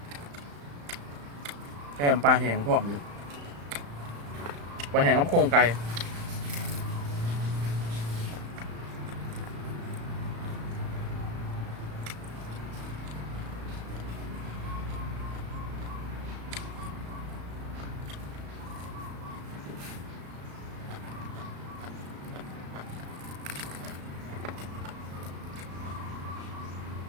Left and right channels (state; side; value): late; left; 35 ms